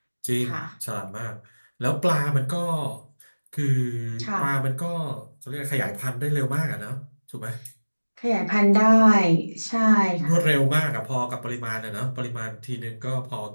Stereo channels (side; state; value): both; inverted; correlation -1.00